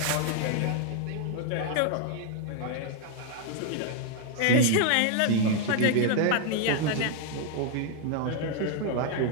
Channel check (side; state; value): both; different; correlation 0.00